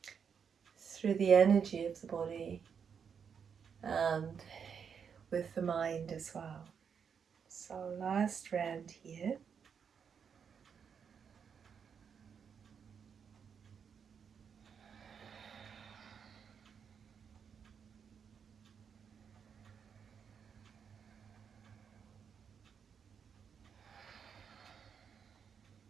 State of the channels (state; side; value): quieter; left; 6.9 dB